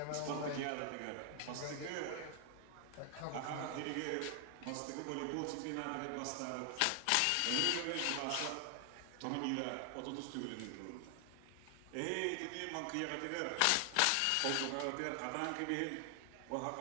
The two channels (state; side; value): different; both; correlation 0.00